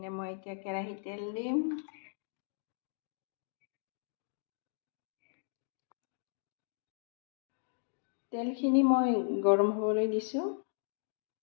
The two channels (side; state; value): right; silent; digital silence